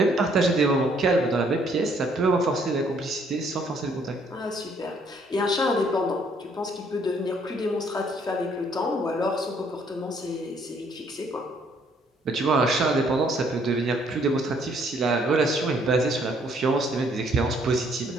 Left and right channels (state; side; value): normal; both; correlation 0.65